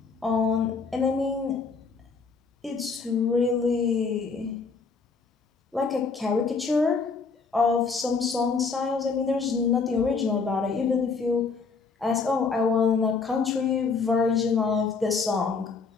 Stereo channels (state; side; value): quieter; right; 4.8 dB